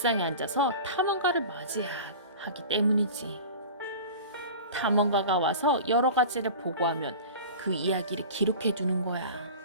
앉아서 탐험가를 맞이하기 때문이지. 탐험가가 와서 여러 가지를 보고하면 그 이야기를 기록해 두는 거야.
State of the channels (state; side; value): inverted; both; correlation -0.36